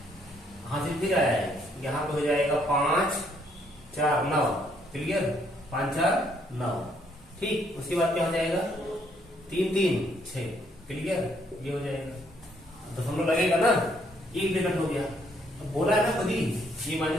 हासिल फिर आया है, यहाँ पे हो जाएगा 5 4 9, क्लियर, 5 4 9, ठीक। उसके बाद क्या हो जाएगा, 3 3 6, क्लियर, ये हो जाएगा। दशमलव लगेगा ना, एक ब्रैकेट हो गया। अब बोला है ना खुद ही, ये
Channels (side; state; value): both; normal; correlation 0.69